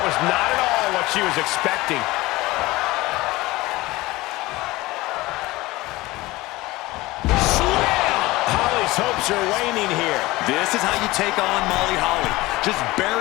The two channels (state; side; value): quieter; right; 19.8 dB